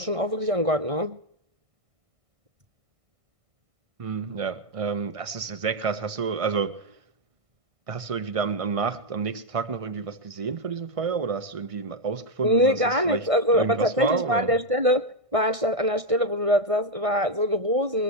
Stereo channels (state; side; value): late; left; 1.6 ms